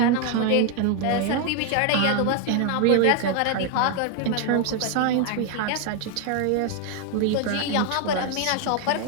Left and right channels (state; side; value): different; both; correlation 0.01